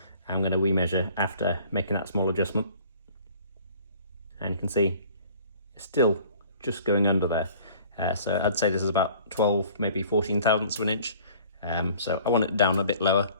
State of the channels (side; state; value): both; inverted; correlation -0.51